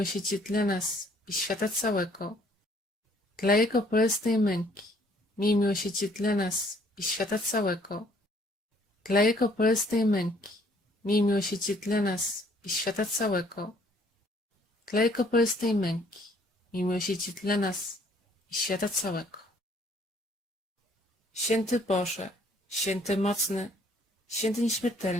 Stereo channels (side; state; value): both; normal; correlation 0.62